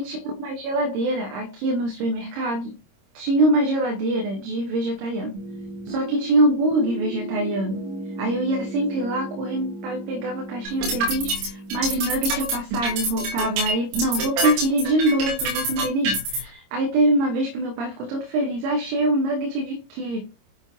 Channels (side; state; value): left; late; 26 ms